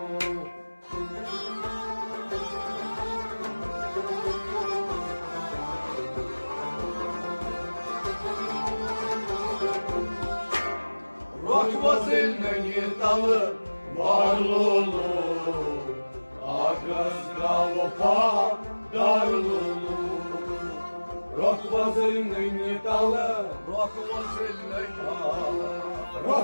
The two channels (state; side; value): inverted; both; correlation -1.00